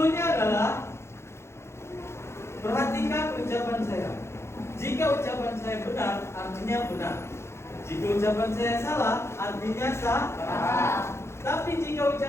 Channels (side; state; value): right; late; 0.13 ms